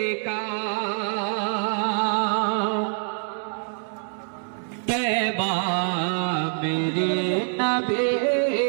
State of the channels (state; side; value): silent; left; digital silence